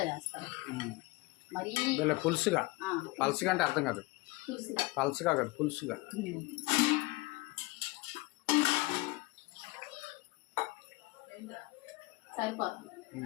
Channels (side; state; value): right; quieter; 23.0 dB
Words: చేస్తాను. మరీ పులుసుగా. పలుసుగా అంటే అర్థం కాదు. పలుసుగా కాదు, పులుసుగా. సరిపోతుంది.